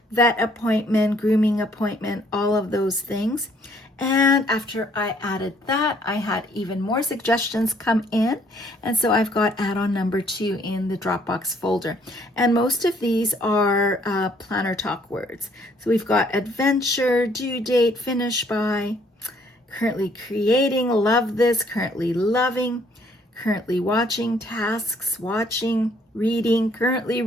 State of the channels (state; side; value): normal; both; correlation 0.64